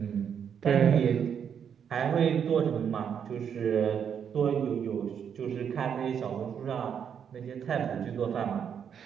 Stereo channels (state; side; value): quieter; left; 7.8 dB